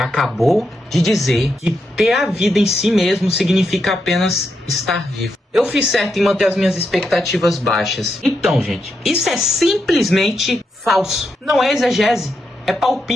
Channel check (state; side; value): normal; both; correlation 0.83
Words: de dizer que ter a vida em si mesmo significa apenas estar vivo. Eu fiz certo em manter as minhas expectativas baixas. Então, gente, isso é simplesmente falso. Não é exegese, é